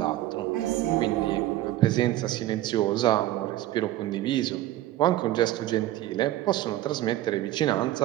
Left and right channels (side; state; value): left; quieter; 14.7 dB